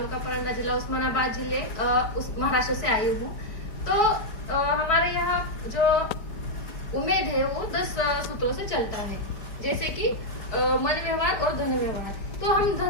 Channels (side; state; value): right; late; 5.1 ms